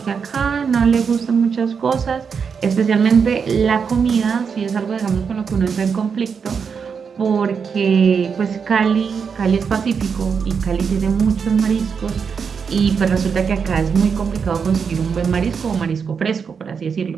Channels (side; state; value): left; quieter; 6.2 dB